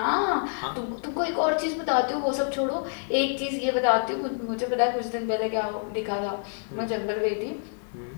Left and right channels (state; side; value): silent; right; digital silence